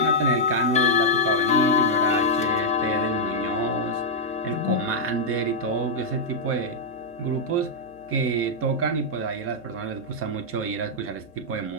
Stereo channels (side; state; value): left; noise; hum, 27 dB below the sound